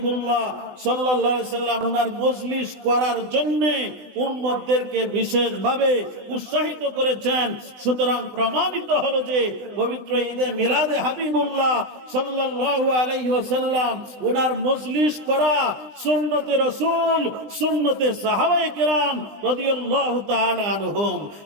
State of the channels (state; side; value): late; left; 20 ms